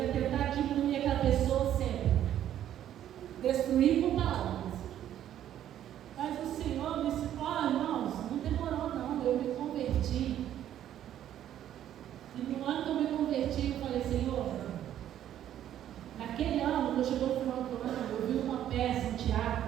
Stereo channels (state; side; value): quieter; left; 11.2 dB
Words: tentar diminuir aquela pessoa sempre. Destruir com palavras. Mas o Senhor me disse, irmãos, não demorou não, eu me converti. E no ano que eu me converti, eu falei, Senhor, naquele ano, quando chegou o final do ano, eu vi uma peça, um